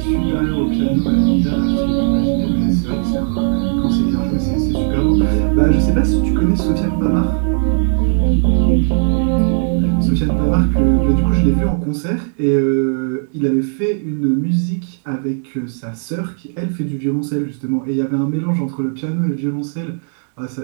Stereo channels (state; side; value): silent; left; digital silence